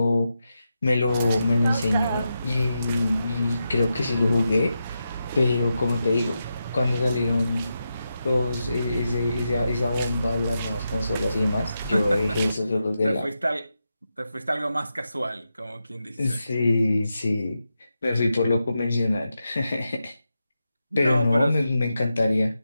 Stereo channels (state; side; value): inverted; both; correlation -0.88